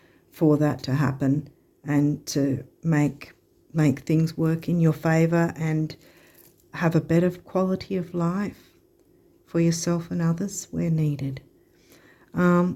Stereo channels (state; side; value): identical; both; correlation 1.00